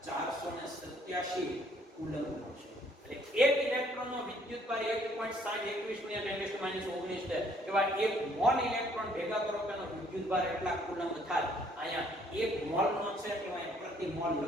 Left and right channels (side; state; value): both; normal; correlation 0.64